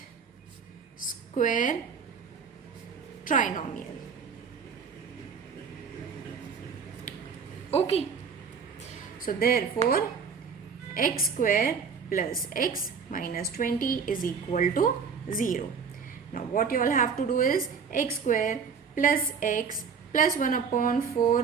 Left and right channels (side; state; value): left; quieter; 6.1 dB